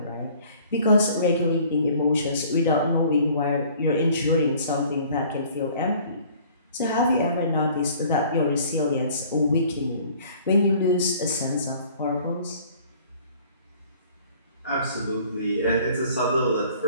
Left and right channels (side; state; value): both; inverted; correlation -0.53